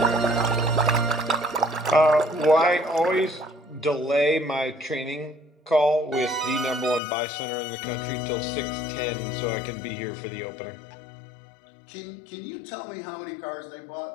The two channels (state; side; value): drops out; right; at 7.0 s